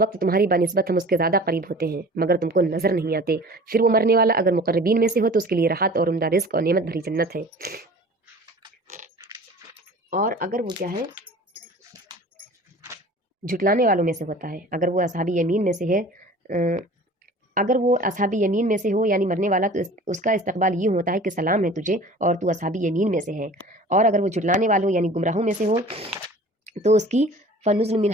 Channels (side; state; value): both; normal; correlation 0.44